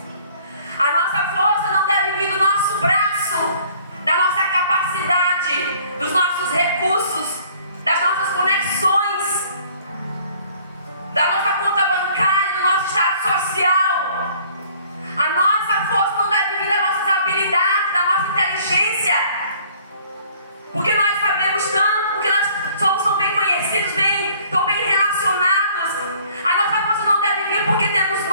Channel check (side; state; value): both; inverted; correlation -0.57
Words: A nossa força não deve vir do nosso braço, da nossa capacidade, dos nossos recursos, das nossas conexões, da nossa conta bancária, do nosso estado social. A nossa força não deve vir das nossas habilidades, da nossa inteligência, porque nós sabemos tanto, porque nós somos bem conhecidos, tão bem relacionados. A nossa força não deve vir porque temos